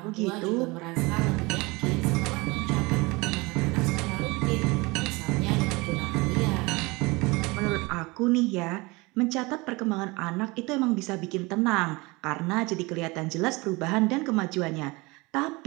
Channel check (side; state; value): left; quieter; 24.4 dB